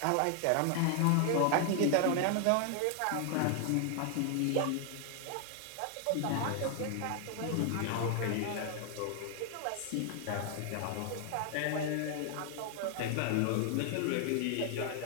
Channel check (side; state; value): both; different; correlation 0.00